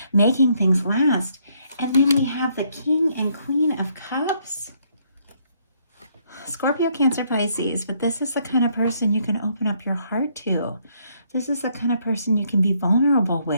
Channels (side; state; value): both; inverted; correlation -0.70